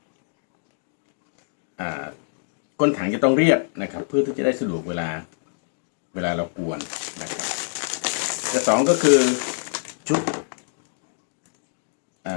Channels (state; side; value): silent; right; digital silence